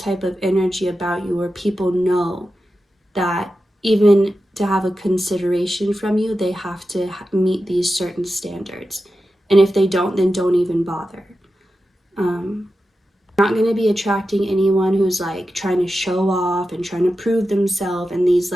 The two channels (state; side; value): normal; both; correlation 0.91